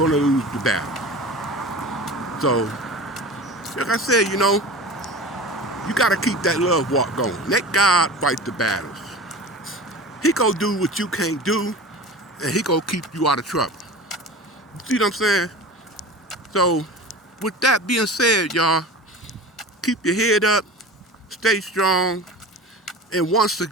to lose the battle. So, like I said, you got to keep that love walk going. Let God fight the battles. He gonna do what you can't do, and he gonna keep you out of trouble. See what I'm saying? So, with that being said, y'all, keep your head up, stay strong, and once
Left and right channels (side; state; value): both; normal; correlation 0.34